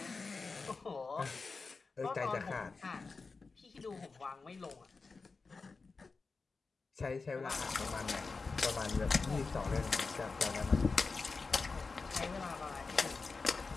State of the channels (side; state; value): right; quieter; 4.3 dB